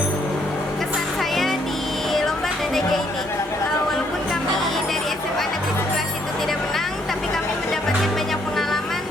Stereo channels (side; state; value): both; normal; correlation 0.69